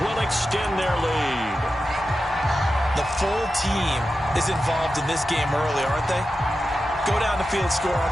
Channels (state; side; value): normal; both; correlation 0.91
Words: will extend their lead. The full team is involved in this game early, aren't they? Go down the field, score on